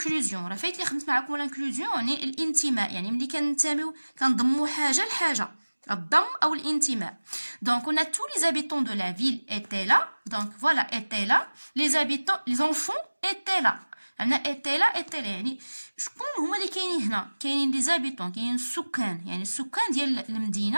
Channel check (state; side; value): inverted; both; correlation -1.00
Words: راه فايت اللي خدمت معكم l'inclusion يعني الانتماء، يعني ملي كننتميو كنضموا حاجه لحاجه، الضم او الانتماء. Donc on a tous les habitants de la ville étaient là. Donc voilà étaient là. Les enfants étaient là. عندنا étaient là يعني شكون هما اللي كاينين هنا؟ كاينين لي زابيتون، كاينين السكان، يعني السكان ديال